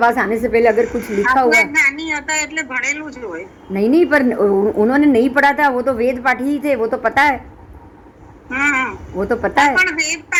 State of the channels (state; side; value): identical; both; correlation 1.00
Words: आने से पहले अगर कुछ लिखा हुआ ज्ञानी होता એટલે ભણેલું જ હોય। नहीं, पर उन्होंने नहीं पढ़ा था, वो तो वेद पाठी ही थे, वो तो पता है, वो तो पता है। પણ વેદ